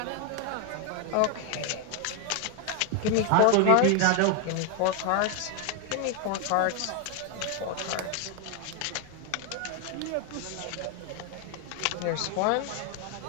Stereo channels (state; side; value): different; both; correlation 0.00